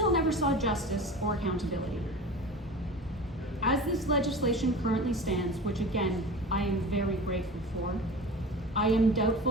never saw justice or accountability. As this legislation currently stands, which again, I am very grateful for, I am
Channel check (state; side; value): normal; both; correlation 0.34